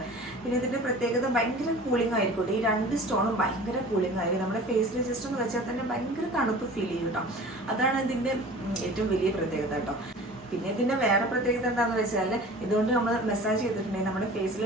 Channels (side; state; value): both; normal; correlation 0.42